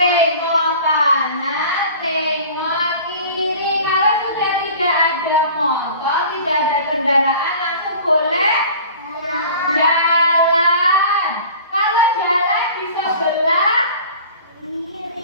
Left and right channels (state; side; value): inverted; both; correlation -0.43